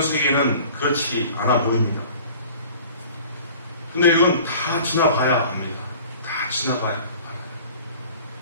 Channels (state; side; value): inverted; both; correlation -0.46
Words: 세계는 그렇지 않아 보입니다. 근데 이건 다 지나봐야 합니다. 다 지나봐야 합니다.